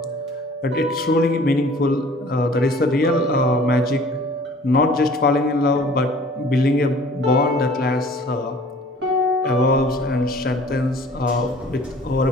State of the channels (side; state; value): both; normal; correlation 0.50